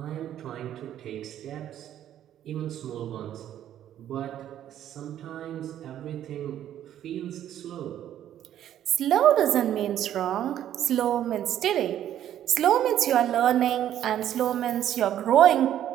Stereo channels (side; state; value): left; quieter; 11.2 dB